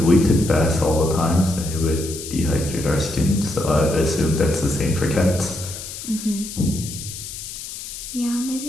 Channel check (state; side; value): noise; left; hiss, 10 dB below the sound